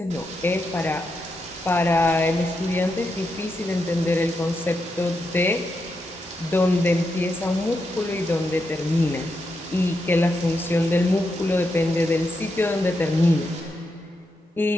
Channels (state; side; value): normal; both; correlation 0.84